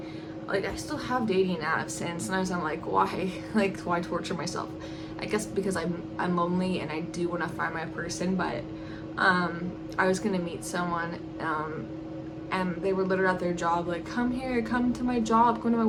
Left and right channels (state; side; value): identical; both; correlation 1.00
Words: like I still have dating apps, and sometimes I'm like, why? Like, why torture myself? I guess because I'm lonely and I do want to find my person. But I was gonna meet someone, and they were literally at their job, like, come here, come to my job, come to my